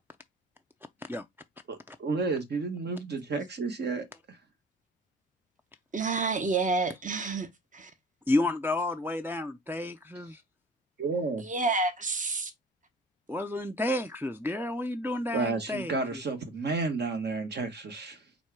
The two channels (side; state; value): both; normal; correlation 0.46